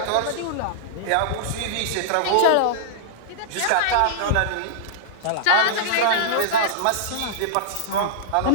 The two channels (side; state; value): both; different; correlation -0.02